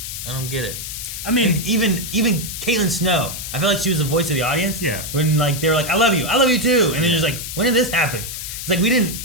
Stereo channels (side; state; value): left; noise; hiss, 7 dB below the sound